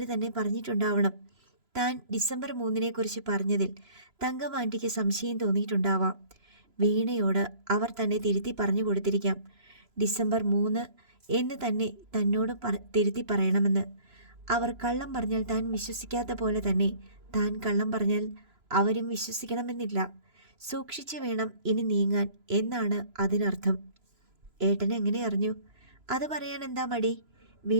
തന്നെ പറഞ്ഞിട്ടുണ്ടാവണം. താൻ ഡിസംബർ 3 പറഞ്ഞതിൽ തങ്കമാൻ്റിക്ക് സംശയം തോന്നിയിട്ടുണ്ടാവാം. വീണയോട് അവർ തന്നെ തിരുത്തി പറഞ്ഞു കൊടുത്തിരിക്കാം. ഡിസംബർ 3 എന്ന് തന്നെ തന്നോട് തിരുത്തി പറയണമെന്ന്. അവർ കള്ളം പറഞ്ഞാൽ താൻ വിശ്വസിക്കാത്ത പോലെ തന്നെ താൻ കള്ളം പറഞ്ഞാൽ അവരും വിശ്വസിക്കണമെന്നില്ല. സൂക്ഷിച്ചു വേണം ഇനി നീങ്ങാൻ എന്നാണ് അതിനർത്ഥം. ഏട്ടൻ എങ്ങനെ അറിഞ്ഞു? അത് പറയാൻ എന്താ മടി?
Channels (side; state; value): left; late; 3.0 ms